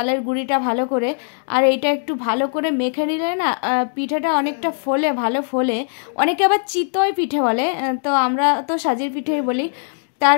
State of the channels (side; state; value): right; silent; digital silence